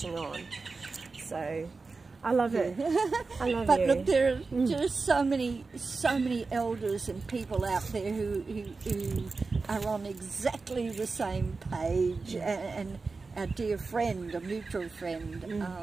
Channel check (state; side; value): quieter; left; 4.1 dB